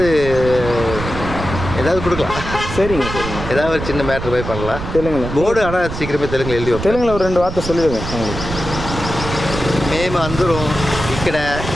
கொடுக்கலாம். சரிங்க சரிங்க. ஏதாவது ஒரு சின்ன மேட்ரு போய் பண்ணலாம் தெலுங்குல. போர்டு ஆனால் சீக்கிரமே தெலுங்குல எழுதி வைப்போம். தெலுங்குல ஒரு 2 வார்த்தை சொல்லிடுங்க அவங்களுக்கு. మేము అందరం ఇక్కడ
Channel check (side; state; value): right; noise; rumble, 7 dB below the sound